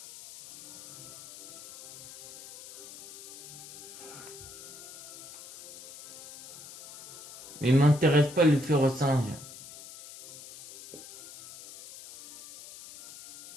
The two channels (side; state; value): left; noise; hiss, 15 dB below the sound